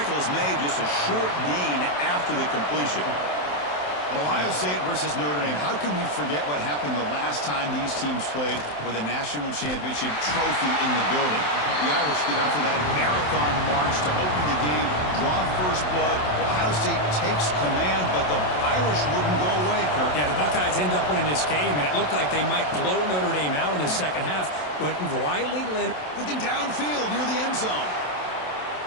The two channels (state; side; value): late; right; 27 ms